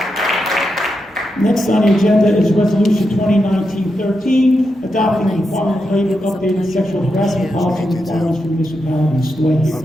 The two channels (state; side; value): normal; both; correlation 0.86